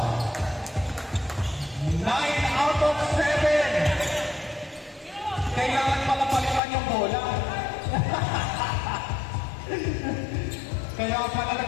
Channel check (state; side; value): drops out; right; at 6.6 s